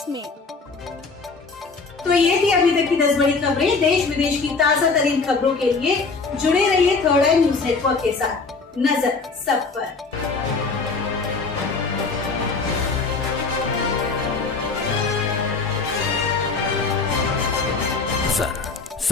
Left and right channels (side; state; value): right; quieter; 4.3 dB